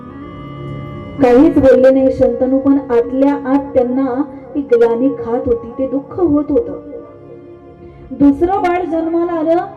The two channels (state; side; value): identical; both; correlation 1.00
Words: काहीच बोलले नाही शंतनू, पण आतल्या आत त्यांना ती ग्लानी खात होती, ते दुःख होत होतं. दुसरं बाळ जन्माला आलं,